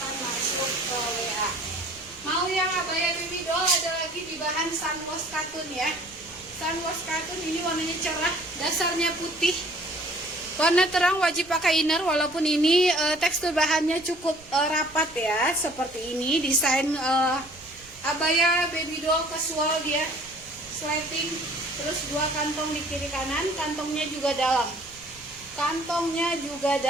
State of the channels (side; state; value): right; noise; rumble, 23 dB below the sound